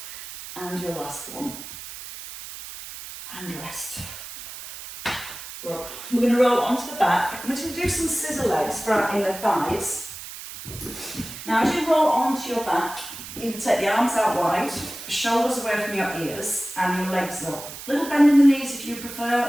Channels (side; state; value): right; noise; hiss, 12 dB below the sound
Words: And your last one. And rest. Rub. We're going to roll onto the back. I'm going to do some scissor legs for our inner thighs. Now as you roll onto your back, you can take the arms out wide, shoulders away from your ears, and your legs up. Little bend in the knees if you prefer,